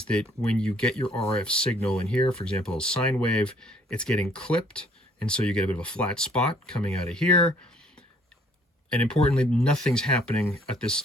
that when you get your RF signal in here, for example, a sine wave, it's getting clipped, and so you get a bit of a flat spot coming out of here. And importantly, nothing's happening at this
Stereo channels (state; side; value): normal; both; correlation 0.61